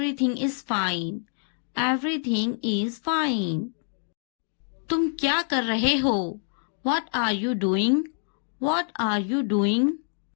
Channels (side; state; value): right; silent; 60 dB below the other